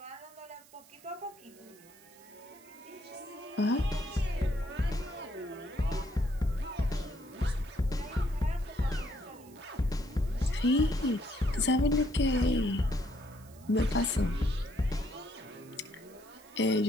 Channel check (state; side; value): noise; right; hiss, 24 dB below the sound